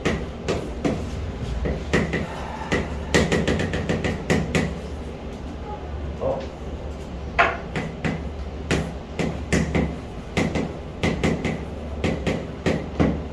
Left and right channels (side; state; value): both; identical; correlation 1.00